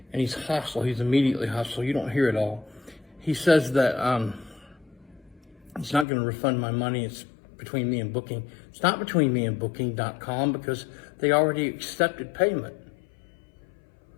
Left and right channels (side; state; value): right; drops out; at 6.1 s